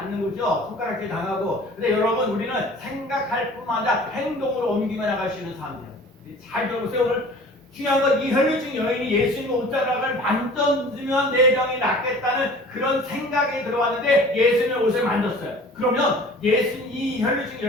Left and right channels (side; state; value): both; normal; correlation 0.45